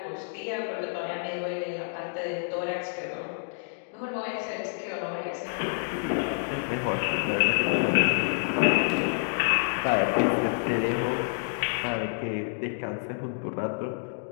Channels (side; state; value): right; silent; digital silence